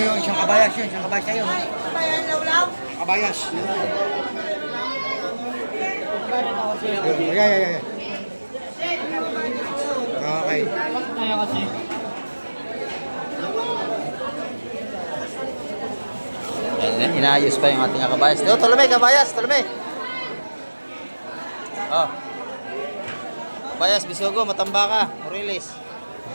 isang kabayas yun. Isang kabayas kayo. Bayan lawlaw. Kabayas. Ay. Okay. kaya kasi. Ayan, inaayos pa yung ating mga kabayas. Ito, Tolome, kabayas, Tolome. Oh. Kabayas, Bisugo, Matambaka, Moriles.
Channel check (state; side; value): inverted; both; correlation -1.00